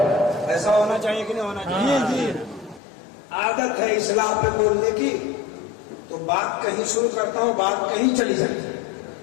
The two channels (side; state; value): right; drops out; at 2.8 s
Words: ऐसा होना चाहिए कि नहीं होना चाहिए? जी। आदत है इस्लाम पे बोलने की, तो बात कहीं शुरू करता हूँ, बात कहीं चली जाती है।